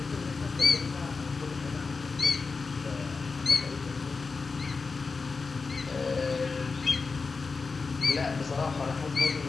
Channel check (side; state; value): right; quieter; 4.5 dB